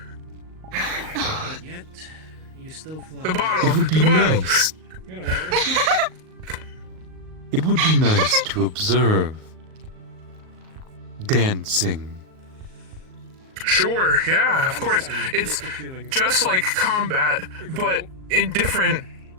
But yet, you still fly. The bottle. It would be nice. It would be nice to observe dancing. Sure, yeah, of course. It's just like combat, but in different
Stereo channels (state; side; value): late; left; 38 ms